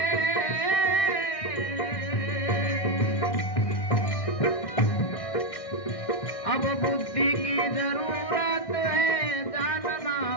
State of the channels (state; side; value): late; right; 1.6 ms